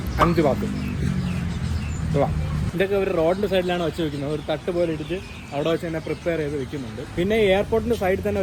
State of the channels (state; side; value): identical; both; correlation 1.00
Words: 5 ബാത്ത്. ഇതൊക്കെ ഒരു റോഡിൻ്റെ സൈഡിലാണ് വെച്ച് വെക്കുന്നത്. ഒരു തട്ട് പോലെ ഇട്ടിട്ട് അവിടെ വെച്ച് തന്നെ പ്രിപ്പയർ ചെയ്ത് വെക്കുന്നുണ്ട്. പിന്നെ എയർപോർട്ടിൻ്റെ സൈഡിൽ തന്നെ